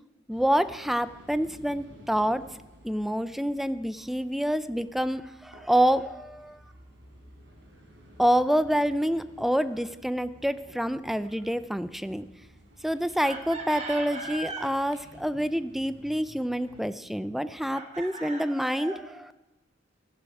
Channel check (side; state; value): both; normal; correlation 0.94